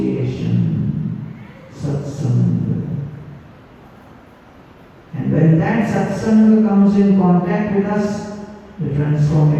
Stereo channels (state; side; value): identical; both; correlation 1.00